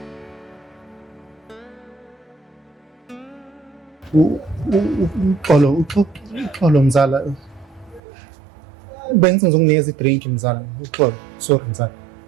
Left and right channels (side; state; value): left; drops out; at 8.0 s